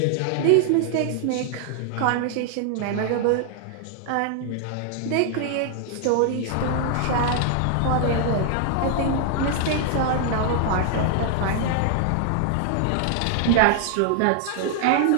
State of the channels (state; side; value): different; both; correlation 0.00